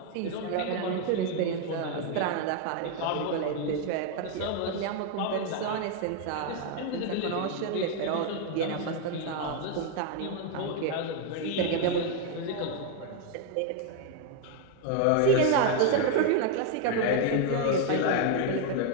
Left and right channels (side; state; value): both; different; correlation 0.01